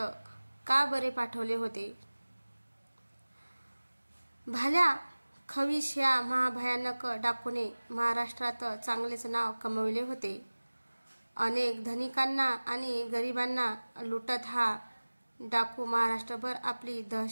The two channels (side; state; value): both; inverted; correlation -1.00